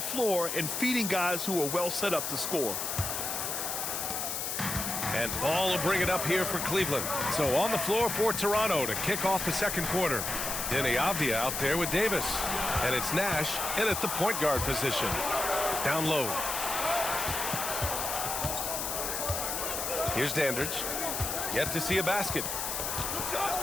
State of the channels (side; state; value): left; noise; hiss, 2 dB below the sound